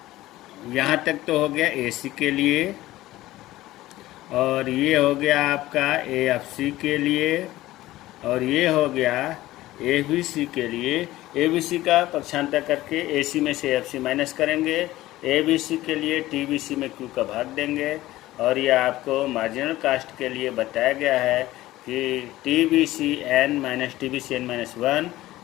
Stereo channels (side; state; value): right; quieter; 16.4 dB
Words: यहाँ तक तो हो गया एसी के लिए, और ये हो गया आपका एएफसी के लिए, और ये हो गया एबीसी के लिए। एबीसी का पक्षांतर करके एसी में से एएफसी माइनस करेंगे, एबीसी के लिए टीबीसी में क्यू का भाग देंगे। और ये आपको मार्जिनल कास्ट के लिए बताया गया है कि TBC N minus TBC N minus 1,